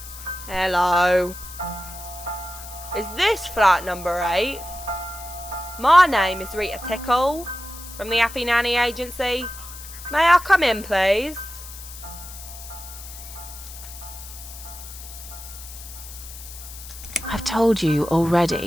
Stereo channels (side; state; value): left; noise; hiss, 14 dB below the sound